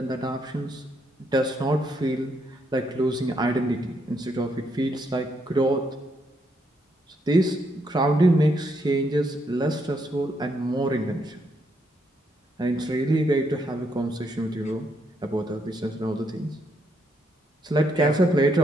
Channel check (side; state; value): both; normal; correlation 0.75